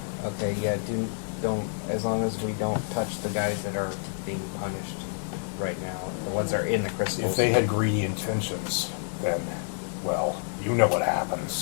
Okay, yeah, don't, as long as we don't touch the guys that are being punished right now, the ones that are in the crystals. If they had greedy intentions, then, well, you know what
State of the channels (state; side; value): silent; right; digital silence